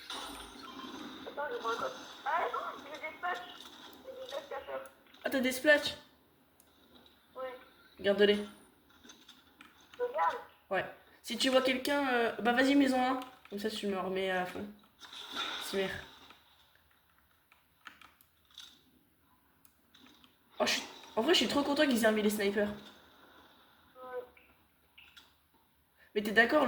Attends, je prends un code. Ah non, j'ai des patchs. J'ai des patchs cacheurs. Ah, t'as des splashs? Ouais. Garde-les. Regarde. Ouais. Si tu vois quelqu'un, bah vas-y, mets-en un. Comme ça, tu me remets à fond. Super. Oh, en vrai, je suis trop content qu'ils aient remis les snipers. Ouais. Mais t'es d'accord,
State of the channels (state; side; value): identical; both; correlation 1.00